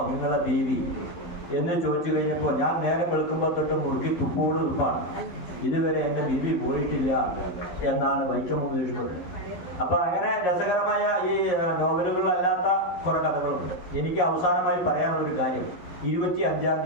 നിങ്ങളുടെ ബീവി എന്ന് ചോദിച്ചു കഴിഞ്ഞപ്പോൾ, ഞാൻ നേരം വെളുക്കുമ്പോൾ തൊട്ട് മുറുക്കി തുപ്പോട് തുപ്പാണ്, ഇതുവരെ എൻ്റെ ബീവി പോയിട്ടില്ല എന്നാണ് വൈക്കം മുഹമ്മദ് ബഷീർ. അപ്പോൾ അങ്ങനെ രസകരമായ ഈ നോവലുകളിലല്ലാത്ത കുറേ കഥകളുണ്ട്. എനിക്ക് അവസാനമായി പറയാനുള്ളൊരു കാര്യം, 25-ാം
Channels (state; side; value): late; right; 12 ms